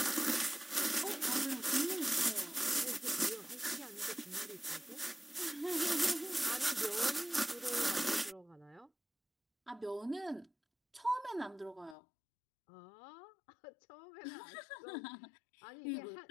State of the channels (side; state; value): right; drops out; at 12.0 s